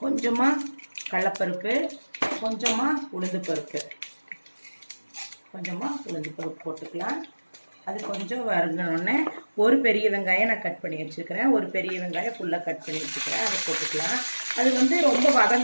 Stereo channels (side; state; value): both; inverted; correlation -1.00